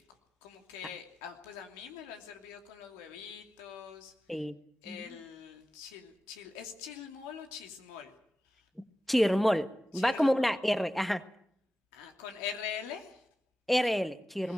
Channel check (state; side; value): normal; both; correlation 0.93